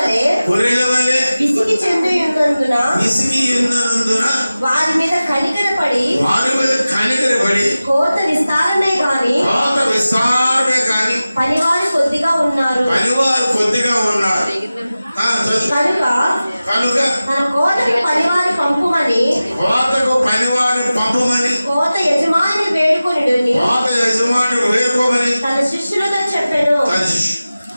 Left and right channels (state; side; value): inverted; both; correlation -0.96